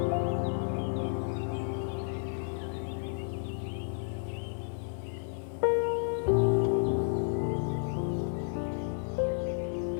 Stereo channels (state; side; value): silent; right; digital silence